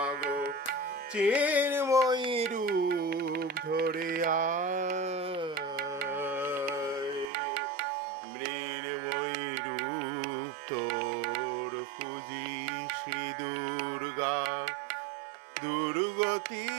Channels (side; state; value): left; drops out; at 7.2 s